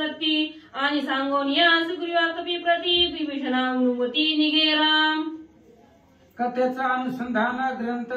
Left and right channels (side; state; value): both; identical; correlation 1.00